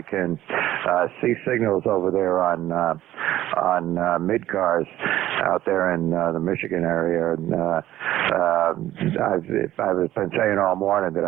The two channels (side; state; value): left; quieter; 13.9 dB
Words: can see signals over there on mid-cars out there in the Michigan area. And I've been saying all morning that